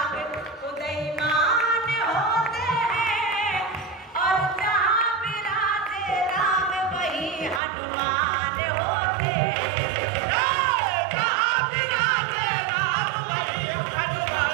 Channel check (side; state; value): left; drops out; at 7.6 s